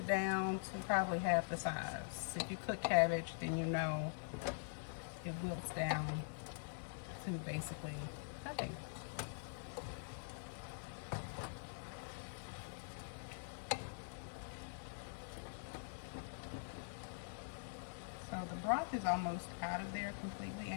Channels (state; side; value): silent; right; digital silence